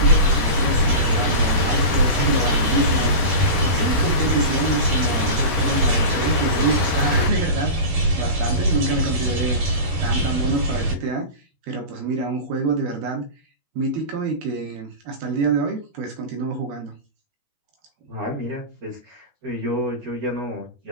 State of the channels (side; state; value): left; late; 12 ms